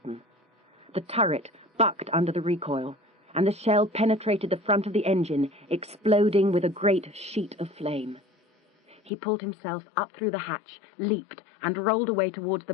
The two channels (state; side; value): drops out; right; at 9.1 s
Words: The turret bucked under the recoil, and the shell penetrated the front of the engine, exploding with a great sheet of flame. He pulled himself up through the hatch, leaped, and rolled away towards